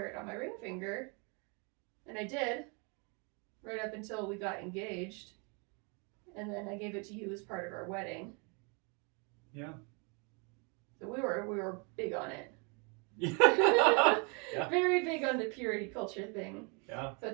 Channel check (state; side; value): quieter; left; 33.8 dB